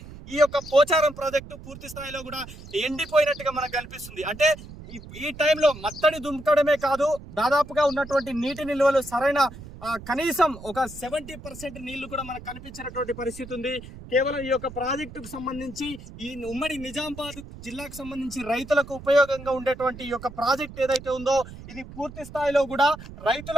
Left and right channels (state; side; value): noise; right; rumble, 15 dB below the sound